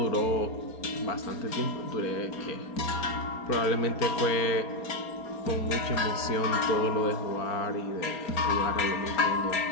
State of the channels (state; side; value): late; right; 4.3 ms